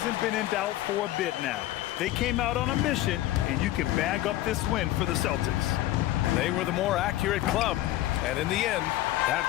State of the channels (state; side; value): quieter; right; 15.1 dB